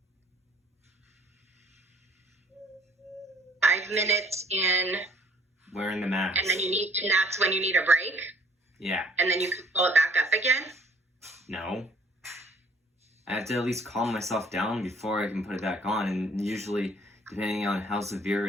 In wearing the mask. And that's when you need a break? Yeah. And then you can pull it back up again? No. I have to at least calm myself down before I can put it back on, and usually, depending on how severe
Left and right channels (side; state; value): both; normal; correlation 0.58